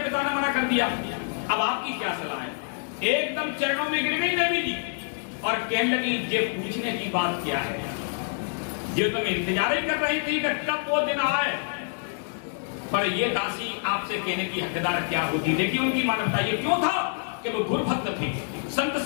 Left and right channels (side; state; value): right; silent; digital silence